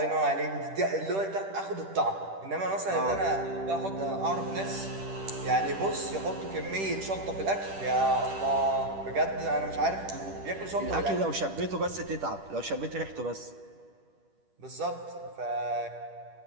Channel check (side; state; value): left; late; 10 ms